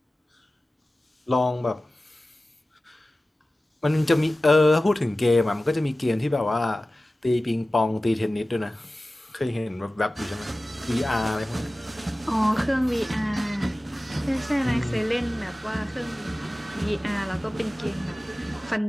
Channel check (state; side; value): normal; both; correlation 0.96